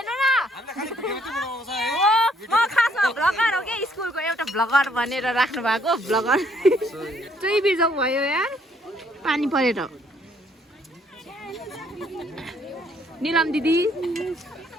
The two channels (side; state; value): both; normal; correlation 0.67